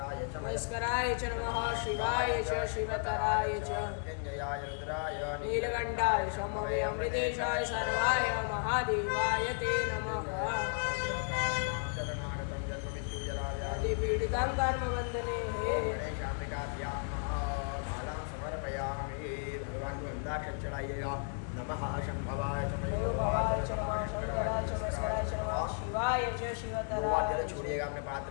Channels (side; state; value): right; silent; 55 dB below the other